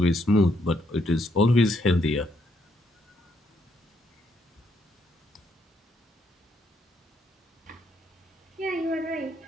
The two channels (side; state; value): both; normal; correlation 0.74